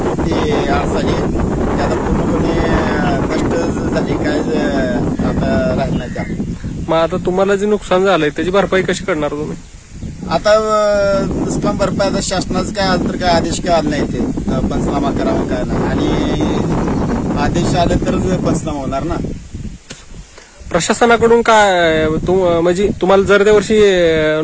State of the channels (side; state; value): both; identical; correlation 1.00